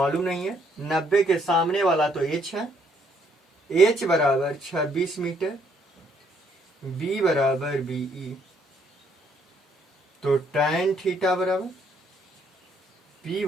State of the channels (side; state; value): both; normal; correlation 0.68